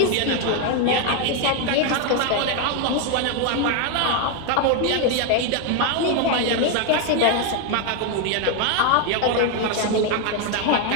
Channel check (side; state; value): both; different; correlation 0.01